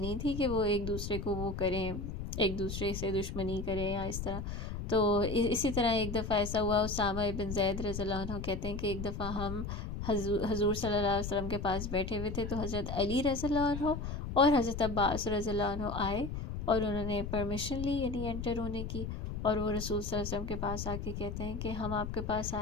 تھی کہ وہ ایک دوسرے کو وہ کریں، ایک دوسرے سے دشمنی کریں یا اس طرح. تو اسی طرح ایک دفعہ ایسا ہوا، اسامہ ابن زید رضی اللہ عنہ کہتے ہیں کہ ایک دفعہ ہم حضور صلی اللہ علیہ وسلم کے پاس بیٹھے ہوئے تھے، تو حضرت علی رضی اللہ عنہ اور حضرت عباس رضی اللہ عنہ آئے، اور انہوں نے پرمیشن لی یعنی انٹر ہونے کی. اور وہ رسول صلی اللہ علیہ وسلم کے پاس آ کے کہتے ہیں کہ ہم آپ کے پاس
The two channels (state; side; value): noise; left; rumble, 5 dB below the sound